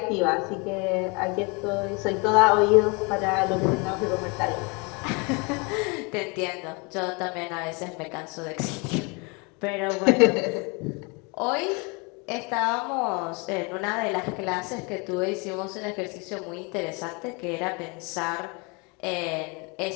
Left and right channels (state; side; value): quieter; right; 30.4 dB